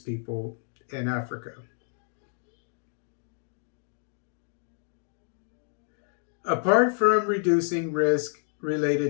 in Africa. Apart from reducing risk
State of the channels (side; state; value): right; silent; digital silence